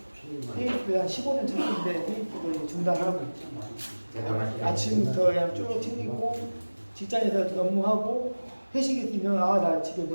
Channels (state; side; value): inverted; both; correlation -1.00